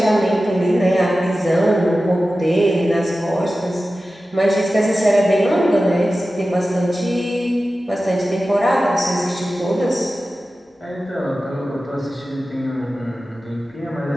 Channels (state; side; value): normal; both; correlation 0.95